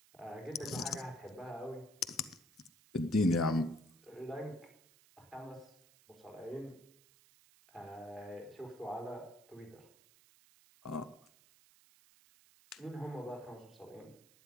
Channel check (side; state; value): right; noise; hiss, 26 dB below the sound